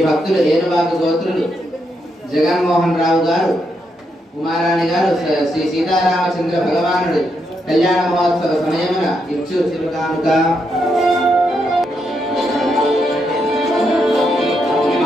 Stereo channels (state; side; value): normal; both; correlation 0.80